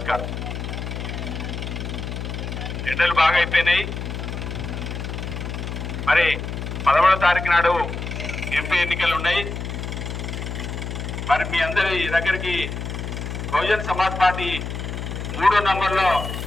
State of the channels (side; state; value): left; noise; hum, 5 dB below the sound